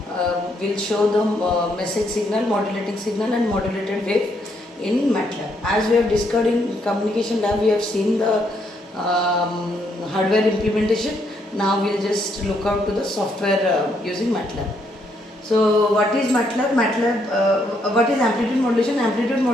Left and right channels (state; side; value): normal; both; correlation 0.74